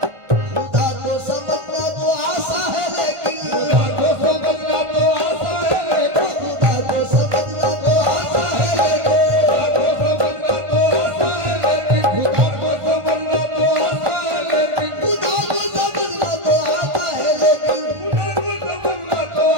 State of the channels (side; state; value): left; late; 1.5 ms